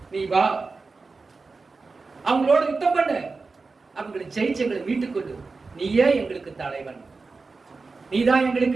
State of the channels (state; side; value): quieter; left; 4.1 dB